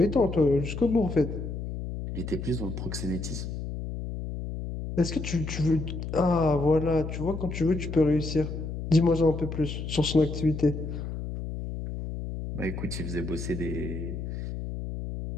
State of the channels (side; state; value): left; noise; hum, 6 dB below the sound